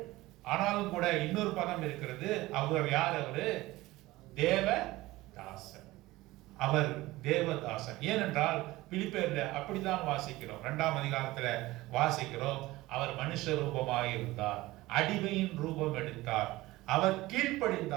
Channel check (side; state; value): left; quieter; 18.7 dB